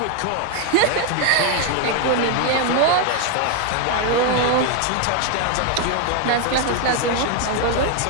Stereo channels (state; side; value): different; both; correlation 0.01